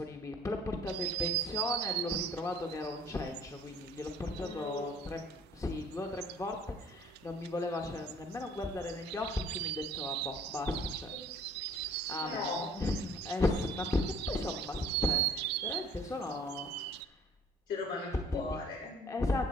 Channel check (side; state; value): both; normal; correlation 0.55